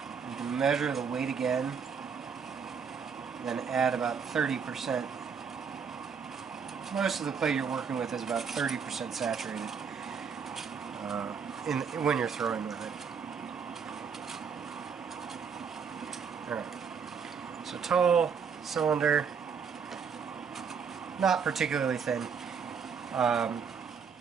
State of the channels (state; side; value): quieter; left; 6.4 dB